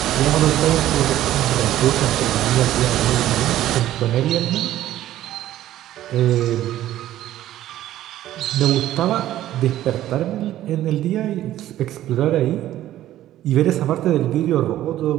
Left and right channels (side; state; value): left; quieter; 13.4 dB